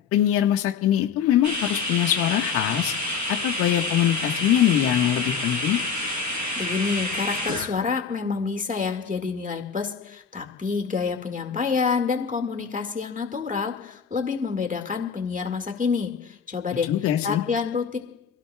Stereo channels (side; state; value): right; quieter; 6.8 dB